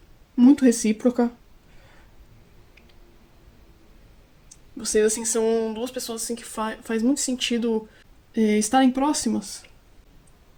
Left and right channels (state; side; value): identical; both; correlation 1.00